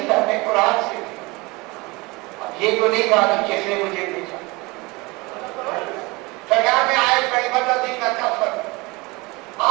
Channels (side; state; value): left; quieter; 24.5 dB